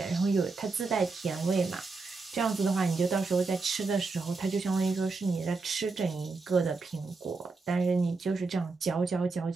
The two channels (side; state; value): left; quieter; 4.0 dB